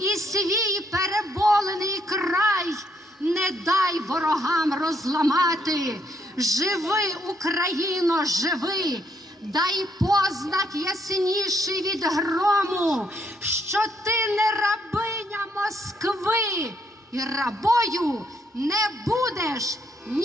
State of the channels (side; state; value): both; normal; correlation 0.73